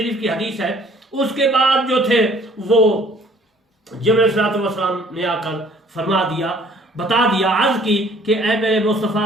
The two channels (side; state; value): both; normal; correlation 0.56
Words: की हदीस है, उसके बाद जो थे वो जिब्रील अलैहिस्सलाम ने आकर फरमा दिया, बता दिया, अर्ज की कि ऐ मेरे